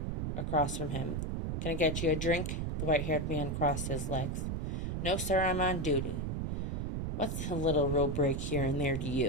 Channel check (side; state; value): right; noise; rumble, 1 dB below the sound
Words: across from him. "Can I get you a drink?" The white-haired man crossed his legs. "No, sir, I'm on duty." "What's a little road break here and there to